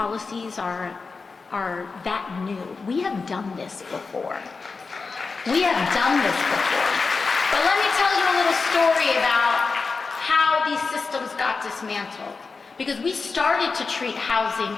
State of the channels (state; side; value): quieter; right; 4.4 dB